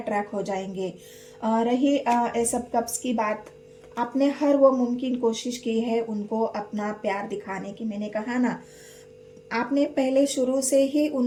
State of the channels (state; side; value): identical; both; correlation 1.00